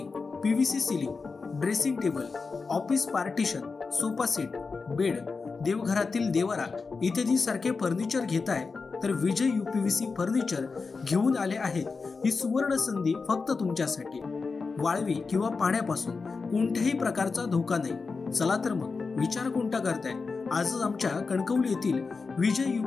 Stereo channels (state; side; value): quieter; right; 4.5 dB